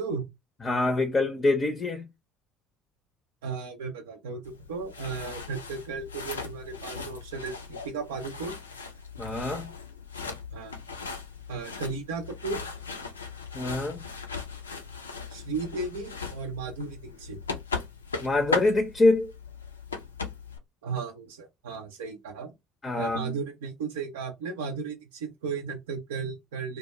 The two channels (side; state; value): both; normal; correlation 0.47